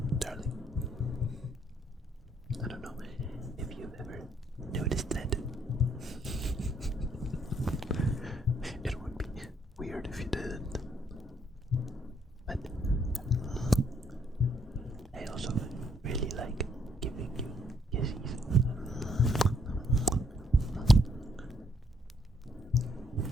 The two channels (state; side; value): normal; both; correlation 0.70